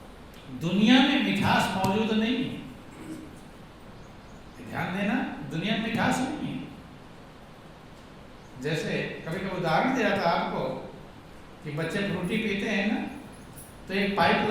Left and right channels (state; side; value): identical; both; correlation 1.00